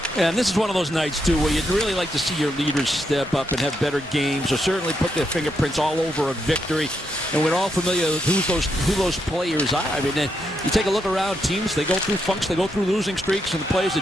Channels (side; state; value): both; normal; correlation 0.81